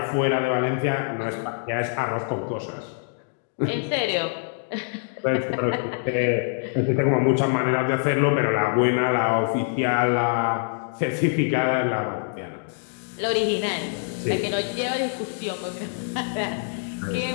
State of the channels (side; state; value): right; silent; digital silence